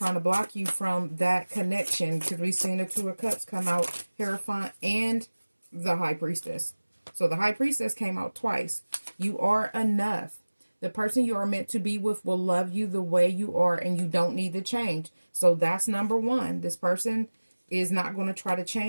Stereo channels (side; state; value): both; inverted; correlation -1.00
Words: to block you from that connection because we've seen the Two of Cups come out, Hierophant, and the High Priestess. So the High Priestess came out twice. You are enough. The person you are meant to be with will love you the way you are, and you don't need to change. So that's number one. This person is not going to try to